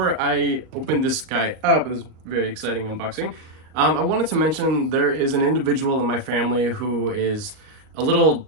I open this guy up, it's a very exciting unboxing, I wanted to mention there is an individual in my family who is a little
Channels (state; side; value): late; left; 38 ms